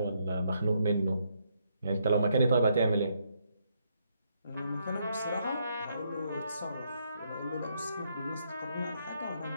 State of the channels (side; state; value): both; inverted; correlation -0.75